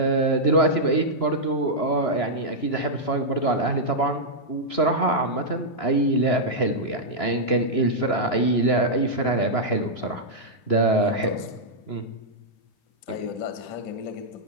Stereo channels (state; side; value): late; right; 3.0 ms